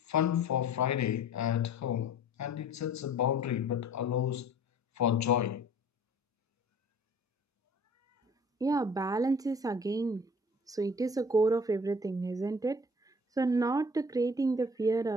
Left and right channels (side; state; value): both; normal; correlation 0.48